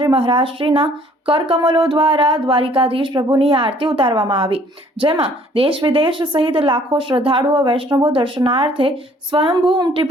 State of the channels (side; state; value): both; normal; correlation 0.58